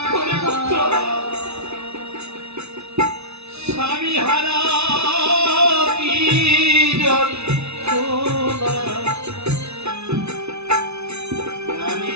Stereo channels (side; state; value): left; late; 0.80 ms